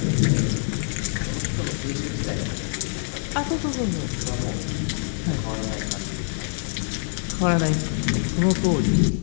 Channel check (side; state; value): right; silent; 62 dB below the other